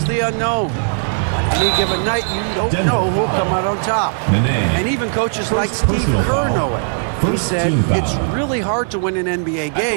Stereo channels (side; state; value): left; silent; digital silence